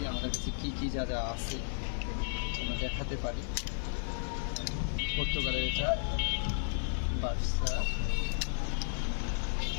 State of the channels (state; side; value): silent; right; digital silence